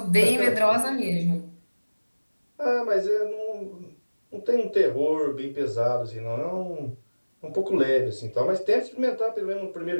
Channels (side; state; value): both; inverted; correlation -1.00